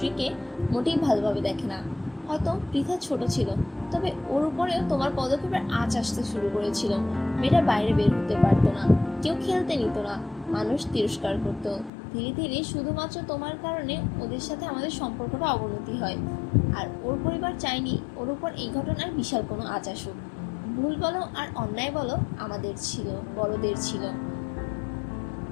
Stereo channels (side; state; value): right; drops out; at 11.9 s